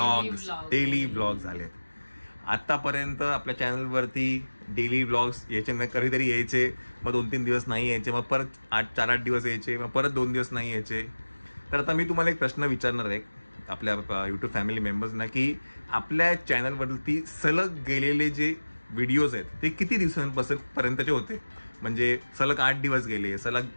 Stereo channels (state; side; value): inverted; both; correlation -1.00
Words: daily vlog झालेत. आतापर्यंत आपल्या चॅनलवरती डेली व्लॉग्स यायचे, कधीतरी यायचे, मग 2-3 दिवस नाही यायचे, मग परत 4-8 दिवस यायचे, मग परत 2 दिवस नाही यायचे. तर आता मी तुम्हाला एक प्रश्न विचारणार आहे आपल्या यूट्यूब फॅमिली मेंबर्सना, की आपल्या चॅनलवरती सलग गेलेले जे व्हिडिओज आहेत ते किती दिवसांपर्यंतचे होते. म्हणजे सलग 8 दिवस गेले, सलग